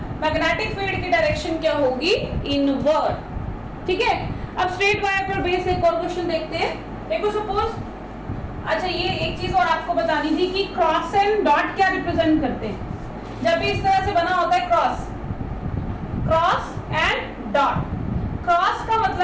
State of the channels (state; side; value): identical; both; correlation 1.00